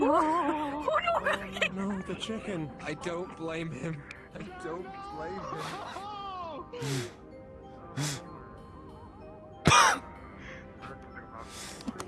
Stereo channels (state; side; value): identical; both; correlation 1.00